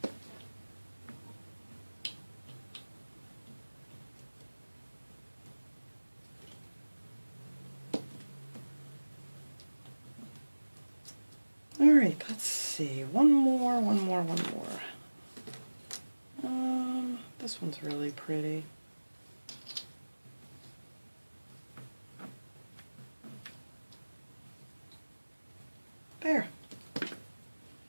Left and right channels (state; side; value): inverted; both; correlation -1.00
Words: Alright, let's see. One more. This one's really pretty. There.